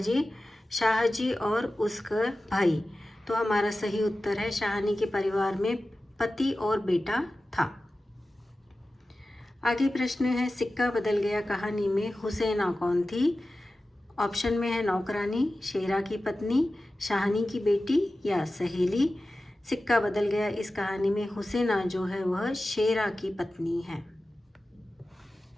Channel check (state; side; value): normal; both; correlation 0.95